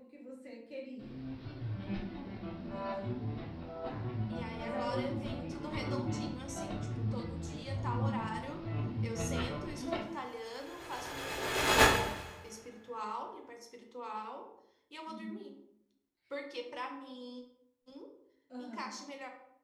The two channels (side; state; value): both; identical; correlation 1.00